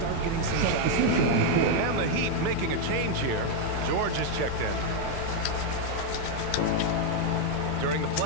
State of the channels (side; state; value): both; different; correlation 0.00